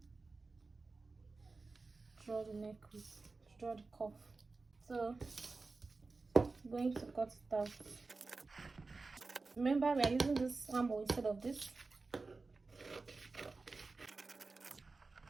draw the neck width, draw the cuff. So I'm going to cut it out. Remember, we are using this armhole instead of this.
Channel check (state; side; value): quieter; left; 3.8 dB